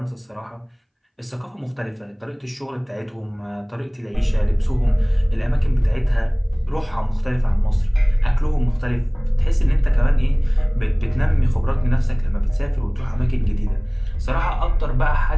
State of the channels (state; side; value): identical; both; correlation 1.00